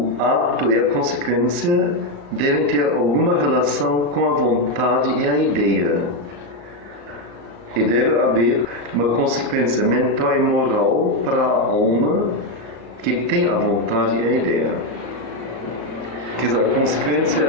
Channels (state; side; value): late; left; 34 ms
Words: ato e a consequência devem ter alguma relação com a vontade e a ideia. E deve haver uma consequência mental e moral para a alma que tem a vontade e a ideia. Quer dizer, a consequência